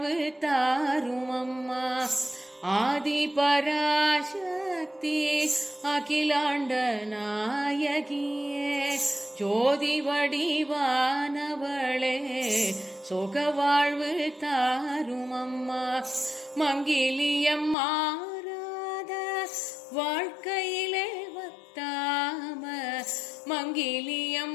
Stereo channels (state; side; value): drops out; right; at 17.8 s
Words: தாரும் அம்மா. ஆதி பராசக்தி அகிலாண்ட நாயகியே. ஜோதி வடிவானவளே சுகவாழ்வு தாரும் அம்மா. மங்கிலியம் மாறாத வாழ்க்கையிலே வத்தாம,